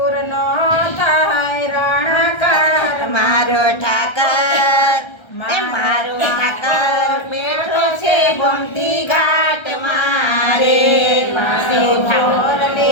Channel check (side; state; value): right; late; 1.3 ms